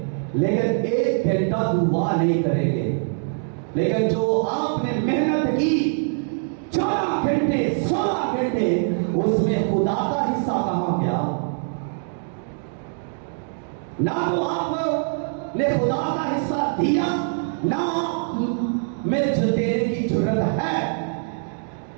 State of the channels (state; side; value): silent; left; 63 dB below the other